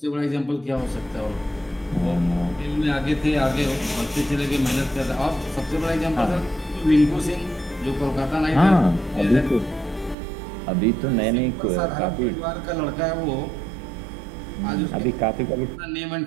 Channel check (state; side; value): drops out; left; at 10.2 s